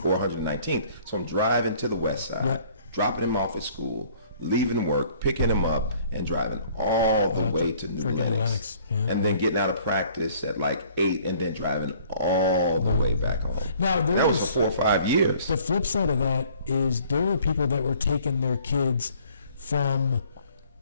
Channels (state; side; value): inverted; both; correlation -0.57